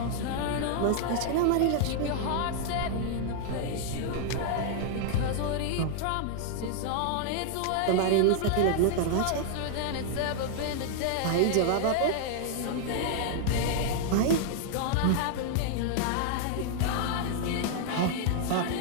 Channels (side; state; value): both; different; correlation -0.01